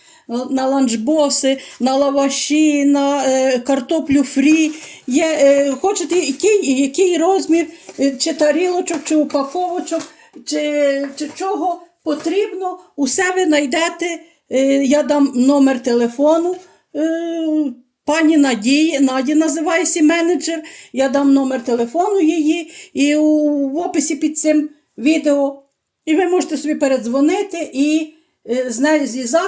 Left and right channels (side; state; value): both; identical; correlation 1.00